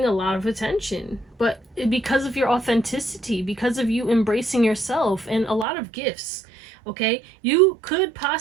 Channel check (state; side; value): drops out; left; at 5.7 s